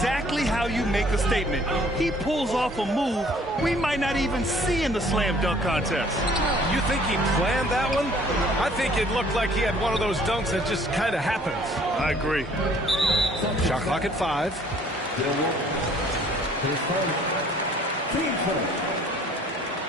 how you make a statement. He pulls off a move we might not even see in the slam dunk contest. You think he planned that one? I think it looked like he had one of those dunks that just kind of happens. I agree. Shot clock at 5.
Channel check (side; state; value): both; normal; correlation 0.57